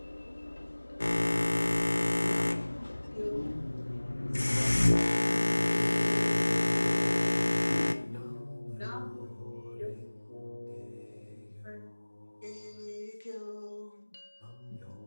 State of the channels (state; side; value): inverted; both; correlation -1.00